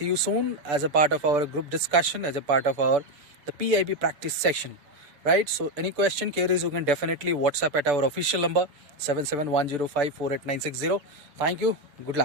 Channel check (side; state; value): left; late; 6.9 ms